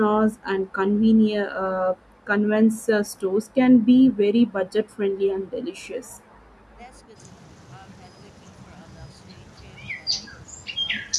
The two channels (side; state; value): both; identical; correlation 1.00